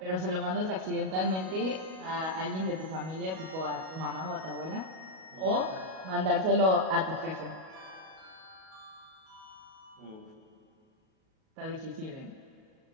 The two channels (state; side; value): late; left; 37 ms